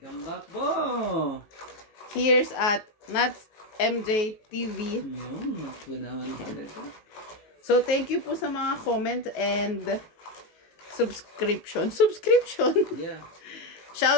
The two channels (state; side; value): late; right; 19 ms